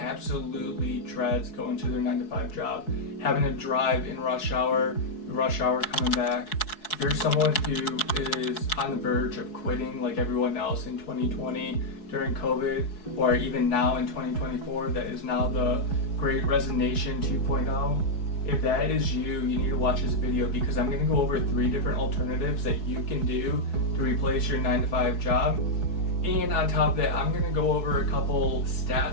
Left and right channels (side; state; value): right; late; 4.7 ms